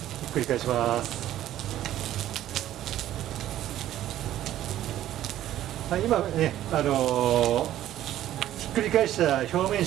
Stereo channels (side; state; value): left; quieter; 12.8 dB